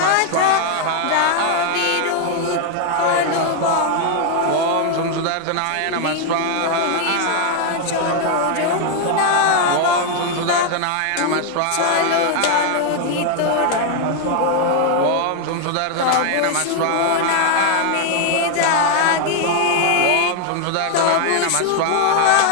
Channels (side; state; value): both; different; correlation 0.00